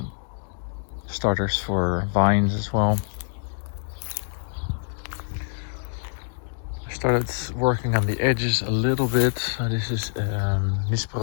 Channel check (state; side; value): silent; right; digital silence